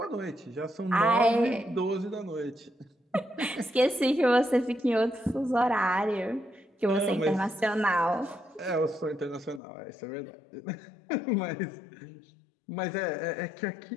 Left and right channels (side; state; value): right; drops out; at 9.6 s